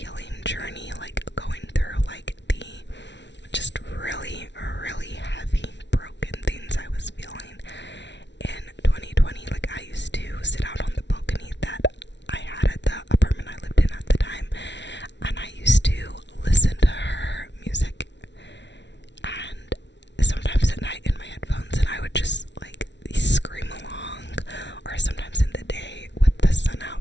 journey, like going through like the just really, really heavy, broken things I was feeling in 2020. Like I used to sit out on the balcony that I had at the apartment I lived in at the time,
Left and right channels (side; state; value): right; late; 0.51 ms